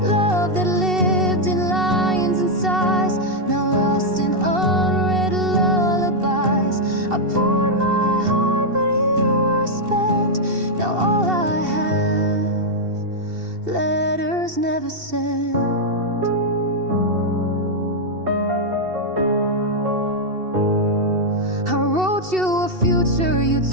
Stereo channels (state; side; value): late; left; 2.7 ms